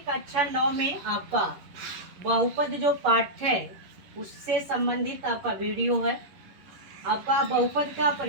कक्षा 9 में आपका बहुपद जो पाठ है उससे संबंधित आपका वीडियो है। आपका बहुपद का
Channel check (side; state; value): left; late; 11 ms